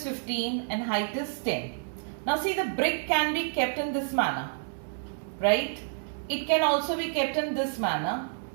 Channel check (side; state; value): left; silent; digital silence